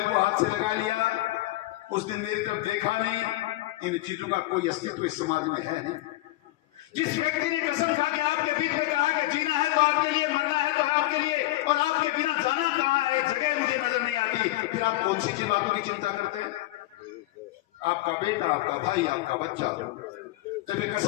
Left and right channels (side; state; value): right; quieter; 17.3 dB